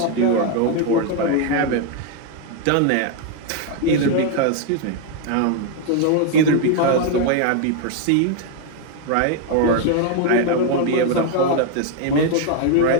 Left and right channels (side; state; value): both; different; correlation 0.01